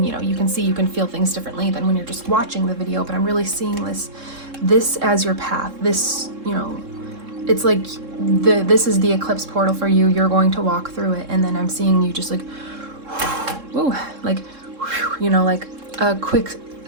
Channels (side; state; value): left; late; 3.7 ms